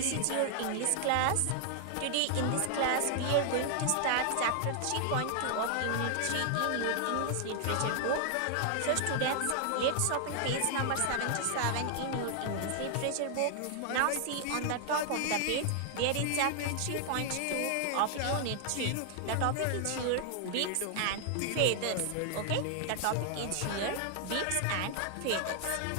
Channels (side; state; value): both; different; correlation 0.00